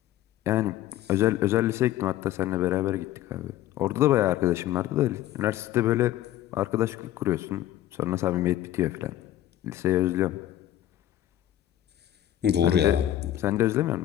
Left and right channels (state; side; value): quieter; right; 13.0 dB